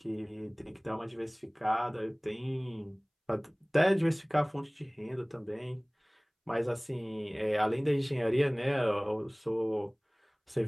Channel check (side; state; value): both; identical; correlation 1.00